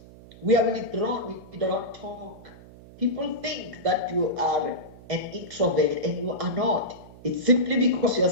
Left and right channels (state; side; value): noise; right; hum, 20 dB below the sound